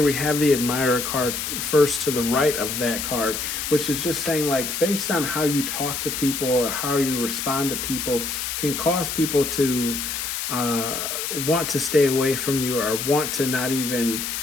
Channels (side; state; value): left; noise; hiss, 3 dB below the sound